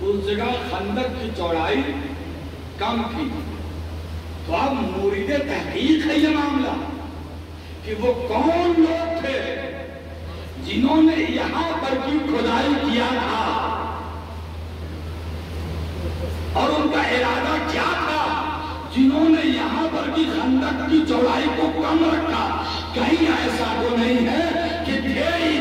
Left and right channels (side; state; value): both; identical; correlation 1.00